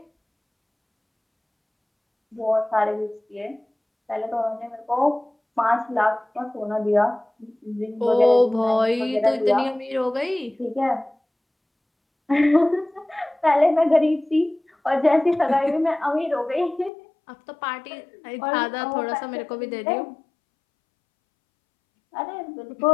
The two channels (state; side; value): drops out; right; at 16.9 s